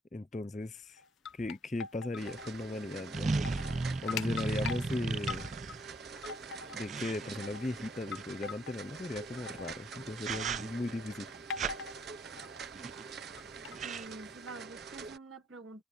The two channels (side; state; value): both; normal; correlation 0.69